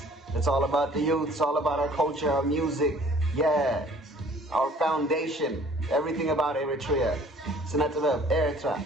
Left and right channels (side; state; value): both; normal; correlation 0.54